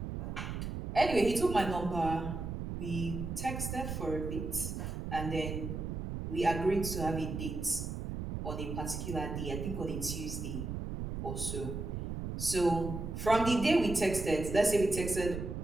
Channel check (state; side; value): noise; right; rumble, 5 dB below the sound